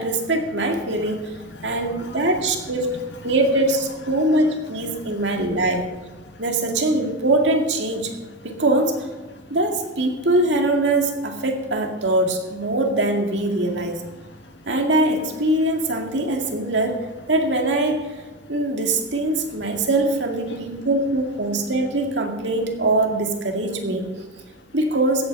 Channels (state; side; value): normal; both; correlation 0.13